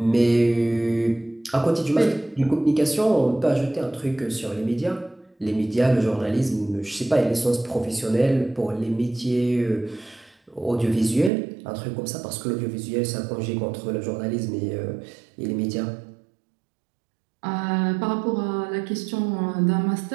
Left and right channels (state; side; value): drops out; left; at 11.3 s